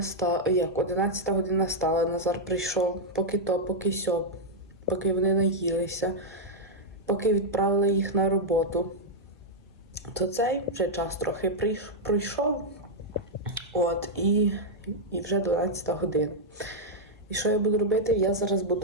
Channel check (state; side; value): normal; both; correlation -0.04